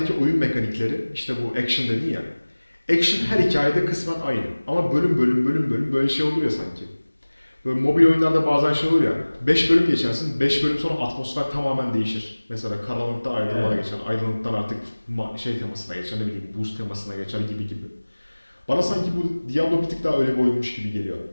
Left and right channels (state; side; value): inverted; both; correlation -1.00